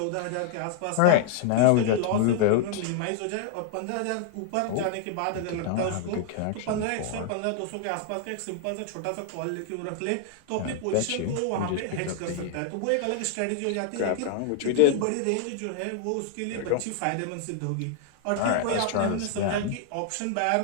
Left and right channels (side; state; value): both; different; correlation -0.01